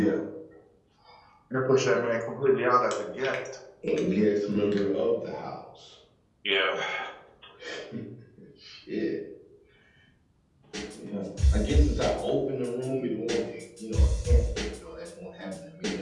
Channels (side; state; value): both; identical; correlation 1.00